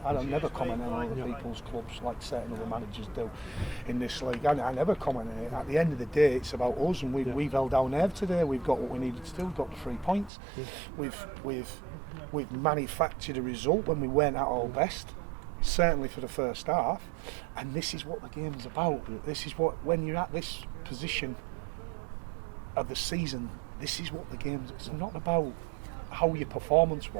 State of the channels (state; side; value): drops out; left; at 10.3 s